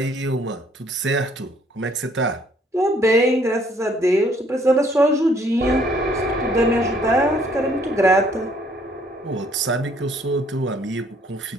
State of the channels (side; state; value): both; normal; correlation 0.64